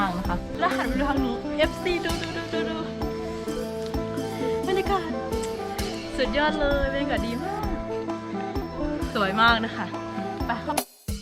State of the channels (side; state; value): both; identical; correlation 1.00